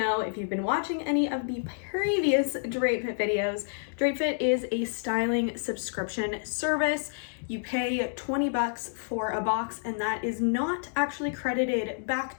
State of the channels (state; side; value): silent; right; digital silence